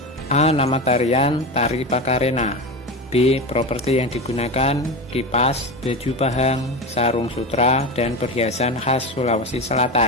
A. Nama tarian Tari Pakarena. B. Properti yang digunakan kipas, baju pahang, sarung sutra, dan perhiasan khas Sulawesi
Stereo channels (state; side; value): normal; both; correlation 0.22